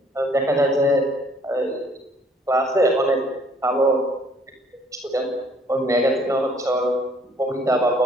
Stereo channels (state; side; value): normal; both; correlation 0.61